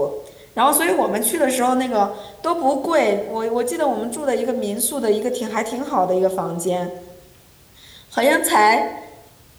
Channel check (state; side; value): identical; both; correlation 1.00